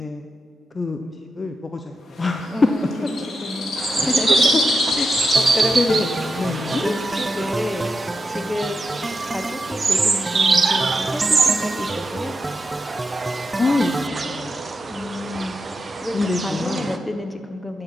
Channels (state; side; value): normal; both; correlation 0.87